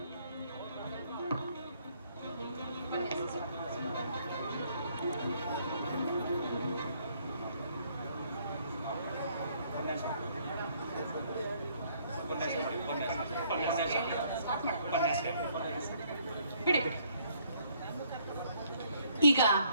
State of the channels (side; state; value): both; inverted; correlation -0.66